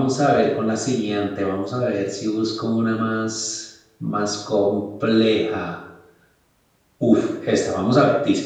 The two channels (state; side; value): identical; both; correlation 1.00